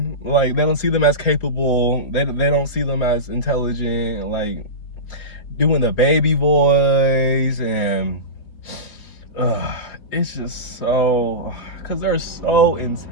Like, they don't see them as capable. They don't see them as intelligent, like doing the baby voice. And it's just so, because they're so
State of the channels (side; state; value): right; late; 4.5 ms